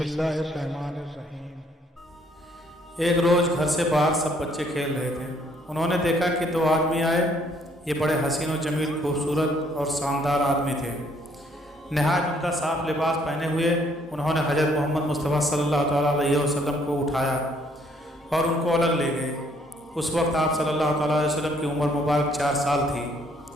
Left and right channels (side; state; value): both; normal; correlation 0.65